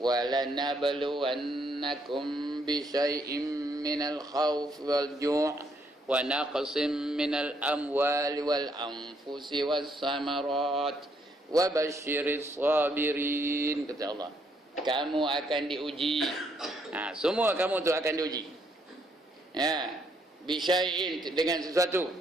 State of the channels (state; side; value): normal; both; correlation 0.72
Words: بِشَيْءٍ مِّنَ الْخَوْفِ وَالْجُوعِ وَنَقْصٍ مِّنَ الْأَمْوَالِ وَالْأَنفُسِ وَالثَّمَرَاتِ وَبَشِّرِ الصَّابِرِينَ. Kata Allah, kamu akan diuji. Semua kamu tu akan diuji. Bisyai'in, dengan sesuatu,